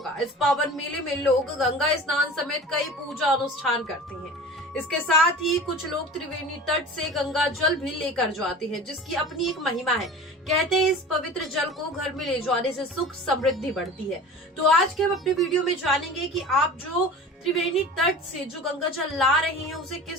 इस पावन मेले में लोग गंगा स्नान समेत कई पूजा अनुष्ठान करते हैं। इसके साथ ही कुछ लोग त्रिवेणी तट से गंगा जल भी लेकर जाते हैं, जिसकी अपनी एक महिमा है। कहते हैं इस पवित्र जल को घर में ले जाने से सुख समृद्धि बढ़ती है। तो आज के हम अपने वीडियो में जानेंगे कि आप जो त्रिवेणी तट से जो गंगा जल ला रहे हैं उसे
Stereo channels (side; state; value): both; normal; correlation 0.37